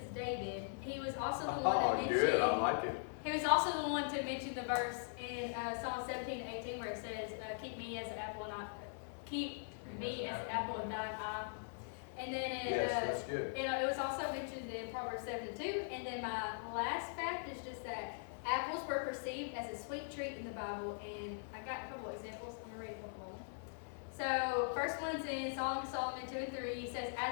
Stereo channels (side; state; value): right; silent; digital silence